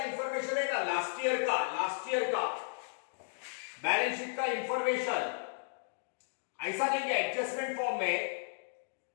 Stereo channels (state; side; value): silent; right; digital silence